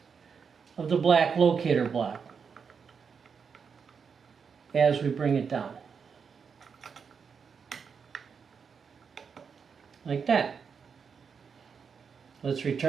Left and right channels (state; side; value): quieter; left; 6.1 dB